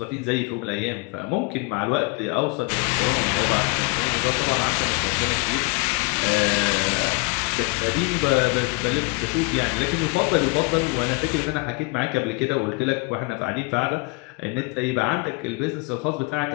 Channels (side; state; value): right; quieter; 29.2 dB